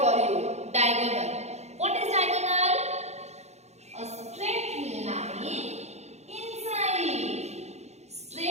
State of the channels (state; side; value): late; left; 0.32 ms